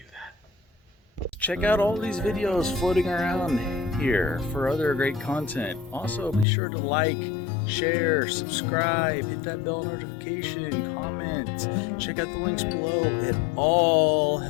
that. Check out all these videos floating around here for other great content. Also, be sure to like, share, subscribe, hit that bell notification, comment, check out the links below. It all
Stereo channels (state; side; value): drops out; right; at 6.5 s